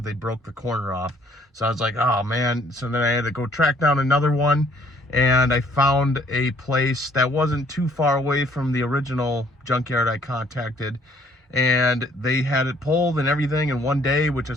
they broke the corner off. So I was like, oh man. So then I had to go track down another one, and I found a place that wasn't too far away from the original junkyard I contacted, and they had it pulled and everything in one day, which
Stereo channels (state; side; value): normal; both; correlation 0.62